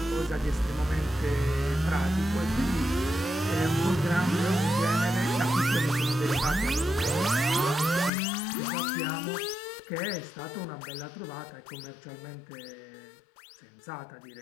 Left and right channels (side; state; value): right; drops out; at 8.1 s